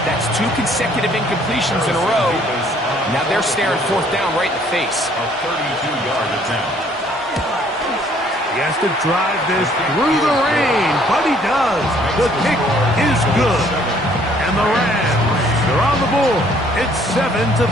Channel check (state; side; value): normal; both; correlation 0.61